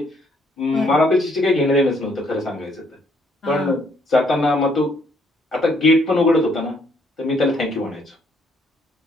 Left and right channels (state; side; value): normal; both; correlation 0.68